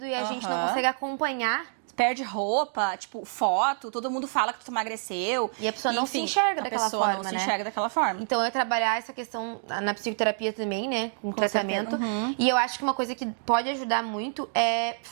e a gente não consegue acompanhar. Perde roupa, tipo, foto, todo mundo fala que tu emagreceu. E a pessoa não se enxerga daquela forma, né? A pessoa não se enxerga daquela forma. Então, eu trabalhar essa questão na psicoterapia também, né? Com tratamento. E eu acho que uma coisa que pode ajudar muito é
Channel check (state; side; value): silent; left; digital silence